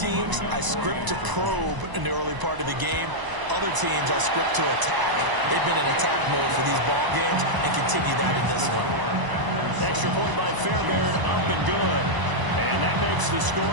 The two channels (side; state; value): left; late; 1.0 ms